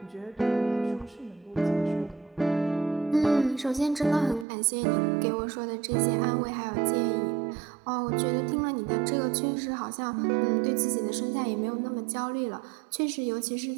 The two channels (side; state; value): left; drops out; at 4.5 s